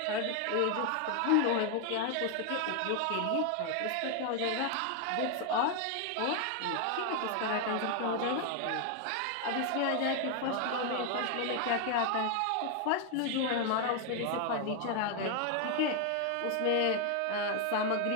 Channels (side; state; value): both; different; correlation 0.01